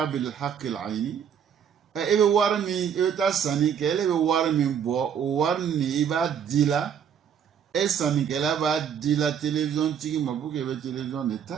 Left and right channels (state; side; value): quieter; left; 8.1 dB